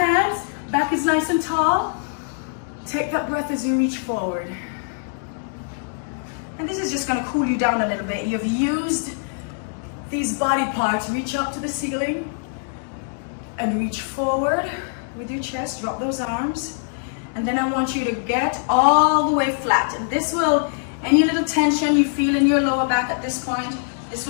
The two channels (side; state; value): right; silent; 63 dB below the other